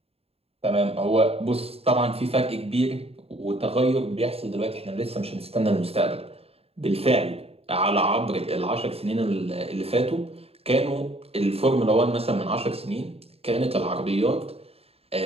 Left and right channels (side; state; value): left; late; 0.29 ms